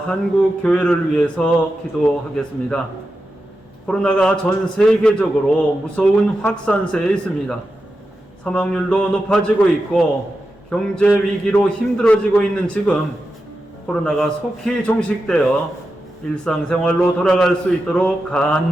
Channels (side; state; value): both; normal; correlation 0.90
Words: 교회를 위해서 기도하겠습니다. 코로나가 전 세계적으로 무서운 확산세에 있습니다. 사망률도 높아지고 있고 경제 위기로 힘들어지고 있는 지금 코로나가 속히 종식되어 일상생활로 돌아갈 수 있도록